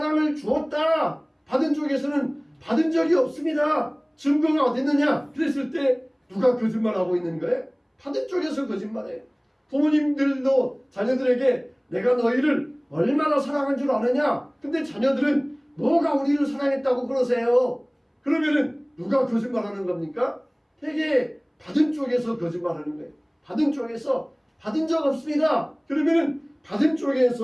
주었다. 받은 쪽에서는 받은 적이 없습니다. 증거가 어디 있느냐? 그랬을 때 누가 거짓말하고 있는 거예요? 받은 쪽에서 거짓말해요. 부모님들도 자녀들에게 내가 너희를 얼마나 사랑한 줄 아느냐? 근데 자녀들은 뭐가 우리를 사랑했다고 그러세요? 그러면은 누가 거짓말하는 겁니까? 되게 받은 쪽에서 거짓말하는 거예요. 받은 쪽에서 받은 적 없습니다. 그러면은 받은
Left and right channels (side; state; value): both; identical; correlation 1.00